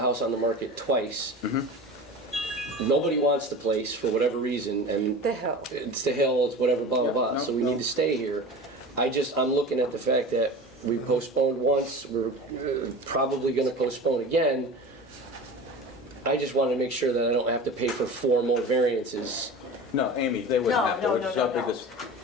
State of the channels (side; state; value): both; normal; correlation 0.33